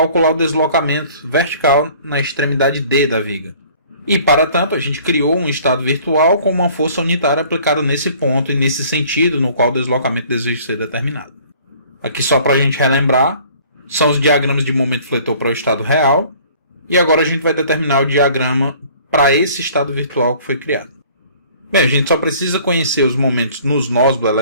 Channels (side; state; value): both; inverted; correlation -0.52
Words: o deslocamento vertical na extremidade D da viga. E para tanto a gente criou um estado virtual com uma força unitária aplicada nesse ponto e nesse sentido no qual o deslocamento deseja ser determinado. Aqui só para a gente relembrar, são os diagramas de momento fletor para o estado real, e agora a gente vai determinar o diagrama para esse estado virtual que foi criado. Bem, a gente só precisa conhecer os momentos nos nós do